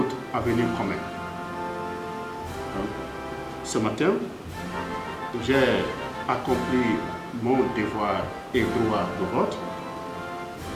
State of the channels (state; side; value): identical; both; correlation 1.00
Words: avenir commun. Donc, ce matin, j'ai accompli mon devoir et droit de vote.